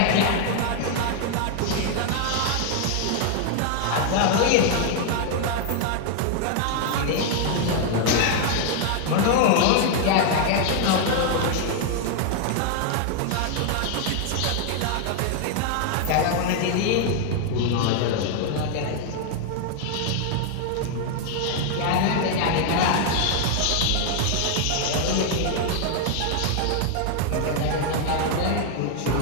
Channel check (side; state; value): both; different; correlation 0.00